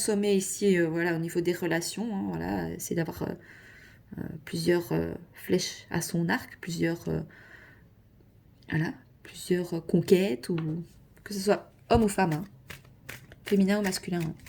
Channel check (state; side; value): identical; both; correlation 1.00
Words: ici, au niveau des relations. Hein, voilà, c'est d'avoir plusieurs flèches à son arc, plusieurs conquêtes, ou que ce soit homme ou femme, hein, féminin ou masculin. Hein.